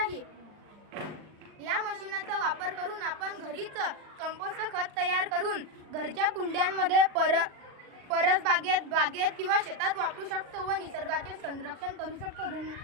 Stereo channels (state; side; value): late; left; 39 ms